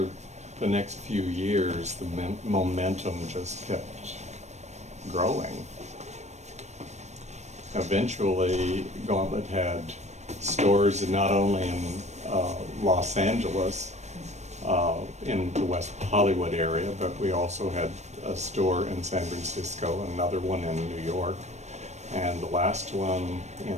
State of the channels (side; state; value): left; late; 0.33 ms